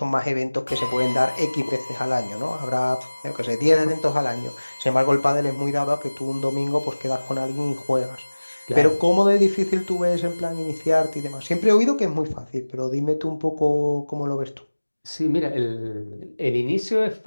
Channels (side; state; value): both; inverted; correlation -1.00